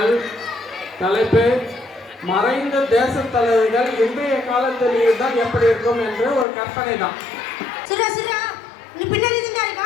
தலைப்பு மறைந்த தேச தலைவர்கள் இன்றைய காலத்தில் இருந்தால் எப்படி இருக்கும் என்று ஒரு கற்பனை தான். நீ பின்னாடி தான்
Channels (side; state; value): right; drops out; at 6.5 s